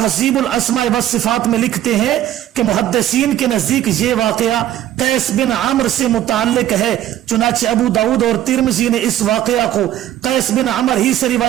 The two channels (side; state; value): left; quieter; 12.5 dB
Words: الاسماء والصفات میں لکھتے ہیں کہ محدثین کے نزدیک یہ واقعہ قیس بن عمرو سے متعلق ہے، چنانچہ ابو داؤد اور ترمذی نے اس واقعہ کو قیس بن عمرو ہی سے